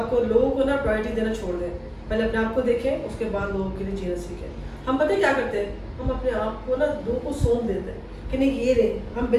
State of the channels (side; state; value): both; identical; correlation 1.00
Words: लोगों को ना प्रायोरिटी देना छोड़ दें, पहले अपने आप को देखें, उसके बाद लोगों के लिए जीना सीखें। हम पता है क्या करते हैं, हम अपने आप को ना लोगों को सौंप देते हैं कि नहीं ये रे, हम